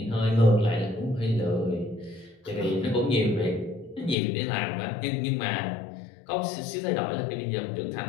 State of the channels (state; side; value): drops out; right; at 4.2 s